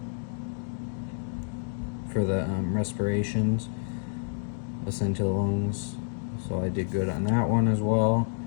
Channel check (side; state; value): right; silent; digital silence